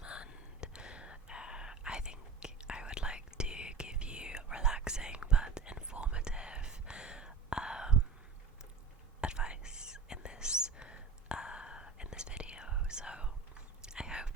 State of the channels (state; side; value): quieter; left; 5.4 dB